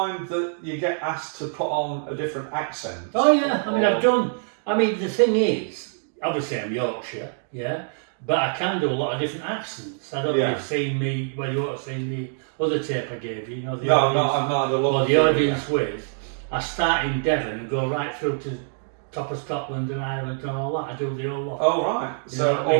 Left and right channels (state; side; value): silent; left; digital silence